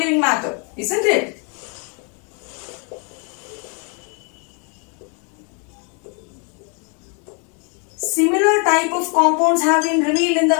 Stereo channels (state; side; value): quieter; right; 36.6 dB